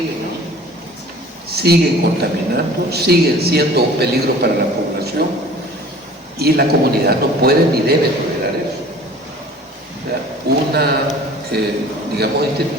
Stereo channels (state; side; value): normal; both; correlation 0.46